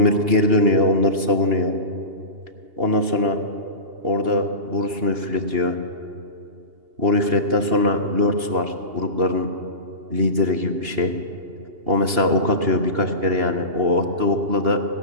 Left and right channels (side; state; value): left; late; 2.8 ms